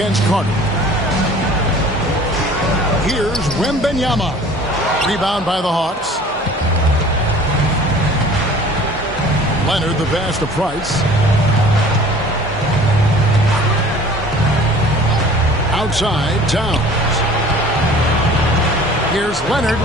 Carter. Here's Wembanyama. Rebound by the Hawks. Leonard the pass to Price. Outside, Towns. Here's Leonard.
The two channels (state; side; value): normal; both; correlation 0.47